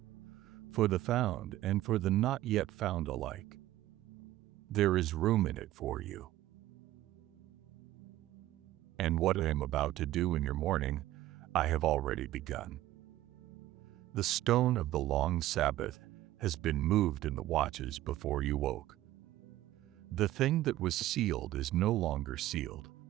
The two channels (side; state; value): left; quieter; 14.8 dB